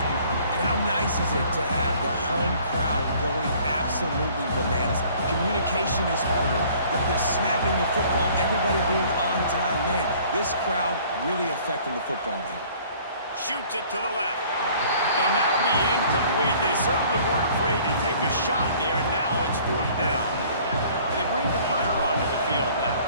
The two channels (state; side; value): inverted; both; correlation -0.54